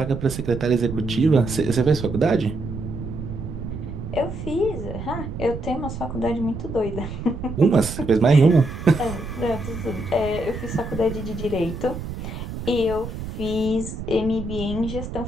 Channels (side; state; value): right; noise; rumble, 8 dB below the sound